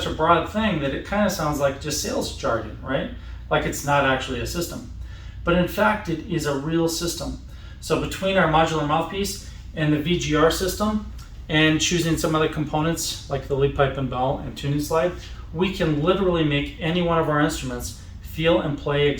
a broad thing that it kind of sounds like just sales jargon, right? Like it's not actually a system. But in fact, it is a real system. So between our modular mouthpiece and the VGR system, and choosing some other components like the lead pipe and bell and tuning slide, we can literally make any one of our instruments feel and play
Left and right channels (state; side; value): identical; both; correlation 1.00